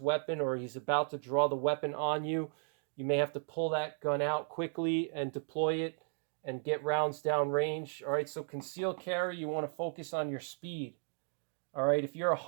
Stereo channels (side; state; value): left; silent; 54 dB below the other